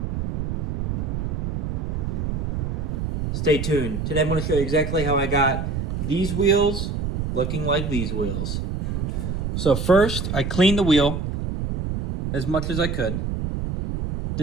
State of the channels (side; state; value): right; noise; rumble, 2 dB below the sound